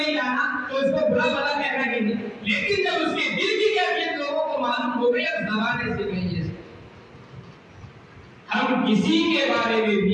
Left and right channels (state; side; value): identical; both; correlation 1.00